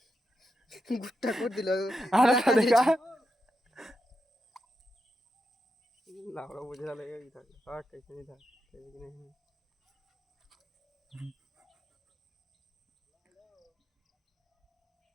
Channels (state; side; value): normal; both; correlation 0.86